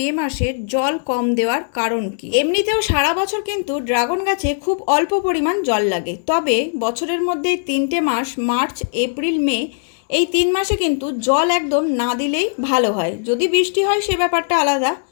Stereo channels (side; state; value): right; silent; digital silence